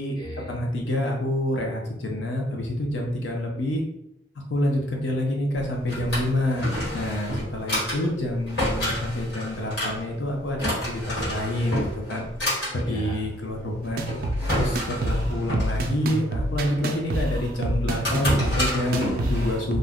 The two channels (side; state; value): both; normal; correlation 0.64